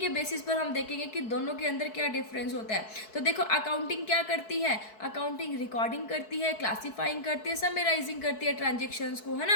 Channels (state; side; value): late; right; 4.6 ms